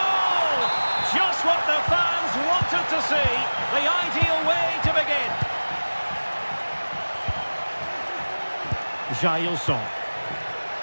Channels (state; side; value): inverted; both; correlation -1.00